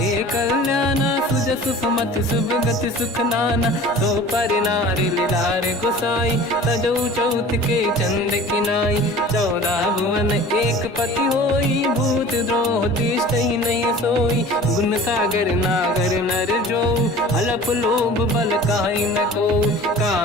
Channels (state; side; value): normal; both; correlation 0.43